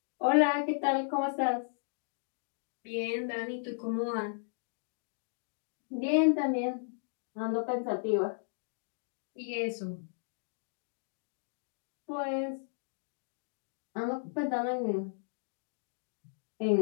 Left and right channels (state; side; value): silent; right; digital silence